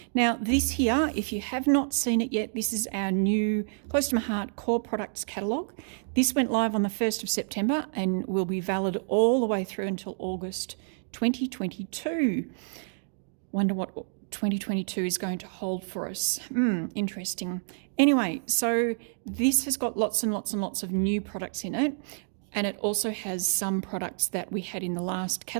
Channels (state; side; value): silent; left; digital silence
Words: Now this here, if you have not seen it yet, this is our new Close to My Heart core products catalogue. This went live on the 1st of September and will be valid all the way through until August 2022. Wonder what 2022 is going to hold for us. Interesting. Anyway, so this has got lots and lots and lots of new products in it, and it also has some products that we had in the last